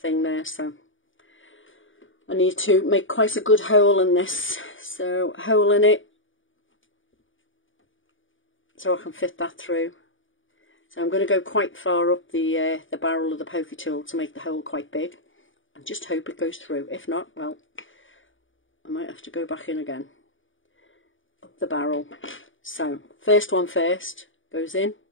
there, so I need to make quite a good hole in this. So, hole in it, so I can fit that through. So I'm going to go quite far up the barrel of the poker tool to make the hole quite big, and just hope it goes through. If not, well, I might have to go back in again. Up the barrel. So, first one first, goes in.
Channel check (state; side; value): late; right; 0.57 ms